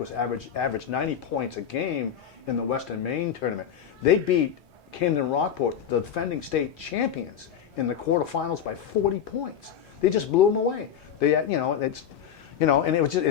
averaged 90 points a game in the Western Maine tournament. They beat Camden Rockport, the defending state champions, in the quarterfinals by 40 points. They just blew them away. They, and it was just,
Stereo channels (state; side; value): quieter; right; 8.6 dB